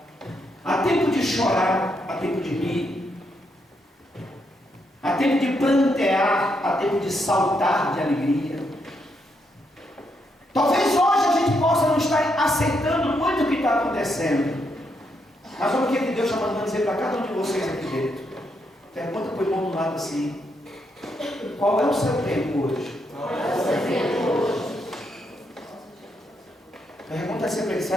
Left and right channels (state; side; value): normal; both; correlation 0.78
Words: há tempo de chorar, há tempo de rir, há tempo de plantear, há tempo de saltar de alegria. Talvez hoje a gente possa não estar aceitando muito o que está acontecendo, mas olha o que Deus está mandando dizer para cada um de vocês aqui dentro. Pergunta para o irmão do lado assim: qual é o seu tempo hoje? Pergunta assim para ele: